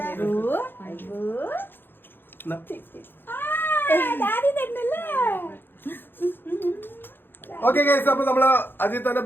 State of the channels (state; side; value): late; right; 0.10 ms